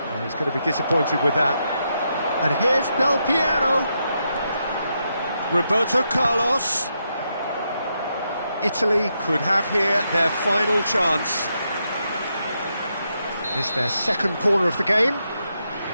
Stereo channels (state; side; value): inverted; both; correlation -0.82